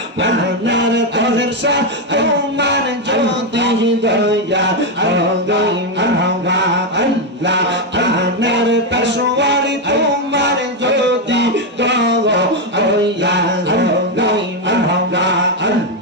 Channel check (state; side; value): normal; both; correlation 0.05